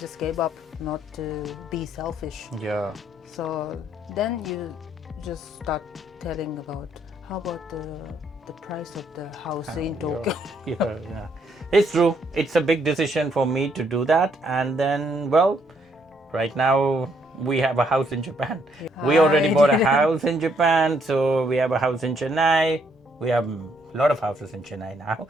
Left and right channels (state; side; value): normal; both; correlation 0.71